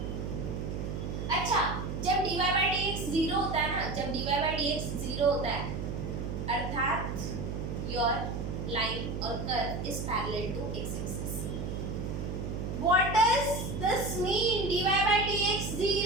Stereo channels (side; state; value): right; noise; hum, 4 dB below the sound